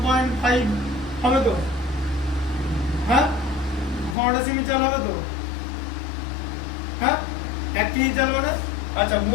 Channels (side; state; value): right; drops out; at 4.2 s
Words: হবে তো, হ্যাঁ? ঘন ডেসিমি চাল হবে তো, হ্যাঁ? 1 কেজি চাল মানে, আচ্ছা,